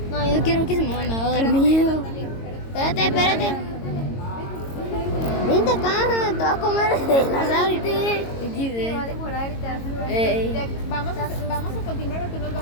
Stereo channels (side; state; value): right; late; 22 ms